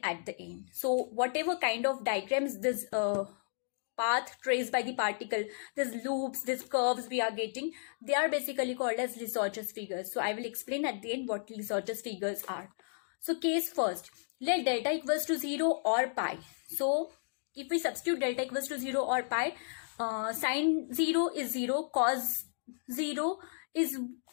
at the end. So whatever kind of diagrams this path traced by the particle, these loops, these curves we are getting, they are basically called as Lissajous figures. So I will explain at the end what Lissajous figures are. So case first, let delta equals to 0 or pi. So if we substitute delta equals to 0 or pi, sine 0 is 0, cos 0 is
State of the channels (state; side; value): silent; right; digital silence